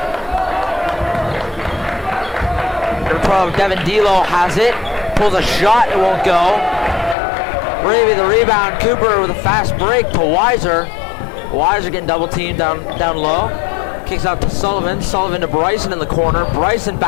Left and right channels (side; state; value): right; drops out; at 7.2 s